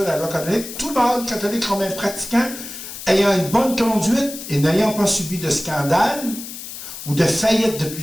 de la loi canonique, tout mâle catholique romain pratiquant, ayant une bonne conduite et n'ayant pas subi de scandale ou de faillite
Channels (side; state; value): left; noise; hiss, 11 dB below the sound